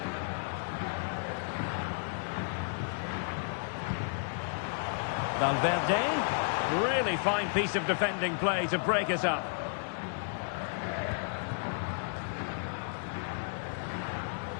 Valverde, really fine piece of defending play to break us up.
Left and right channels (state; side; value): silent; right; digital silence